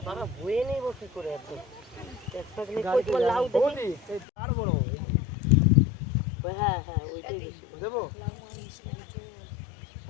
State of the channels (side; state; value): right; drops out; at 4.2 s